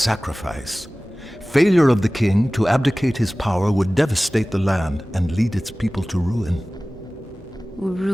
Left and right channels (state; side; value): normal; both; correlation 0.98